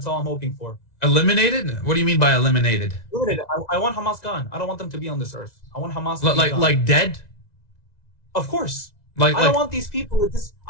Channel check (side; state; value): right; late; 1.9 ms